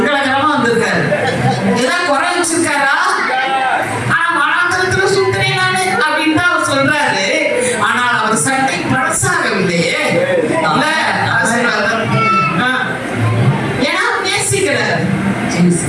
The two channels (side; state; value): both; identical; correlation 1.00